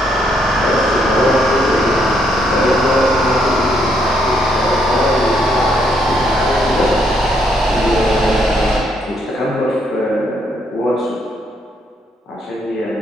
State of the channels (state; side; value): normal; both; correlation 0.72